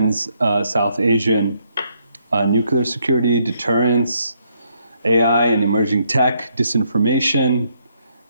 South Asian nuclear security, deterrence, AI and emerging tech, disinformation,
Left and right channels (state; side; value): inverted; both; correlation -0.74